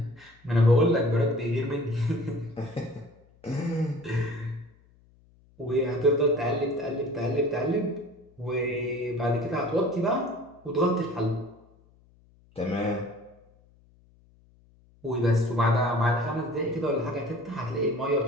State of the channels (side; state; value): left; noise; hum, 30 dB below the sound